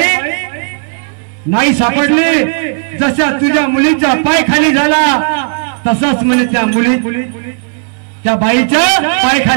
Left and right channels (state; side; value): silent; left; 65 dB below the other